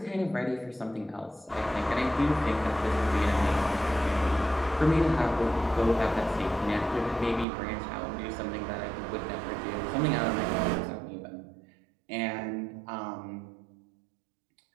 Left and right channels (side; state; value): left; drops out; at 7.5 s